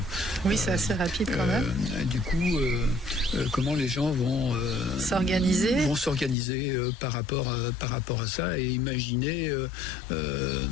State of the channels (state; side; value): drops out; right; at 6.4 s